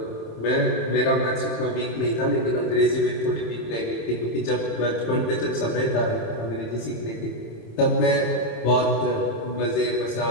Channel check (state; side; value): late; right; 27 ms